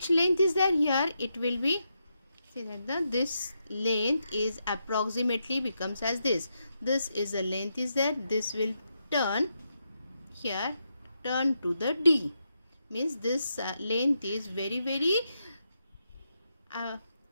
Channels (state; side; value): inverted; both; correlation -0.83